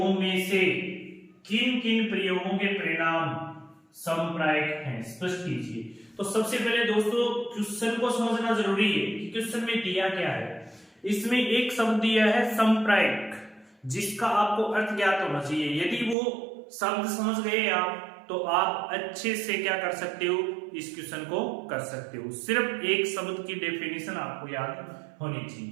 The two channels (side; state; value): left; drops out; at 16.2 s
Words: में से किन किन प्रयोगों के परिणाम समप्रायिक हैं, स्पष्ट कीजिए। तो सबसे पहले दोस्तों क्वेश्चन को समझना जरूरी है कि क्वेश्चन में दिया क्या है। इसमें एक शब्द दिया है समप्रायिक, जिसका आपको अर्थ ज्ञात होना चाहिए। यदि वो शब्द समझ गए आप, तो आप अच्छे से क्या कर सकते हो, इस क्वेश्चन को कर सकते हो। सिर्फ एक शब्द की डेफिनेशन आपको याद होनी